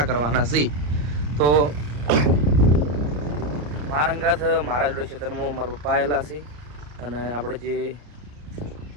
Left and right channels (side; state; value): left; late; 34 ms